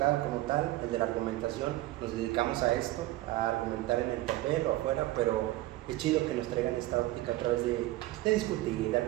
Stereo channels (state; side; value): quieter; left; 17.2 dB